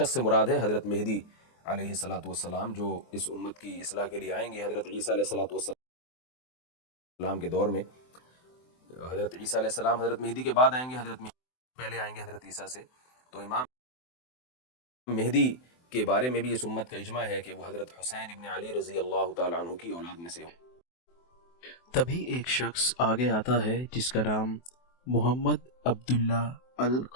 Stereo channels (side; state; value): right; late; 23 ms